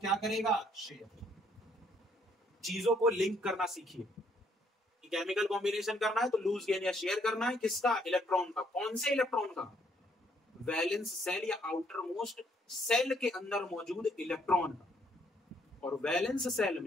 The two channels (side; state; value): both; normal; correlation 0.68